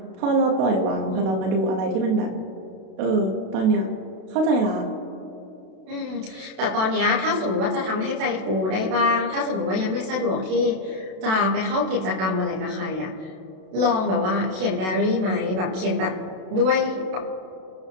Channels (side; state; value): left; late; 32 ms